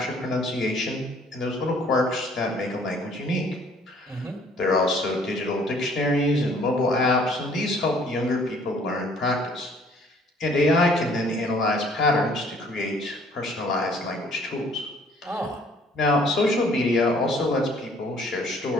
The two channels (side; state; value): both; normal; correlation 0.58